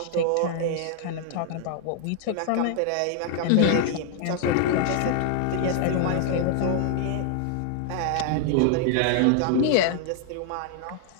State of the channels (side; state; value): both; different; correlation 0.00